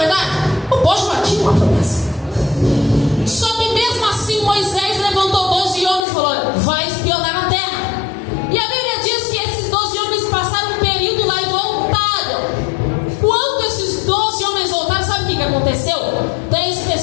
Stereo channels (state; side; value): drops out; right; at 6.1 s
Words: O povo já tinha uma promessa. Só que mesmo assim Moisés levantou 12 homens e falou: olha, vai espionar a terra. E a Bíblia diz que esses 12 homens passaram um período lá e voltaram. Quando esses 12 homens voltaram, sabe o que aconteceu? 10